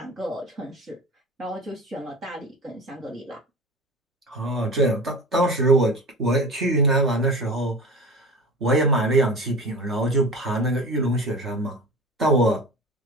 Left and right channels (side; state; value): both; normal; correlation 0.34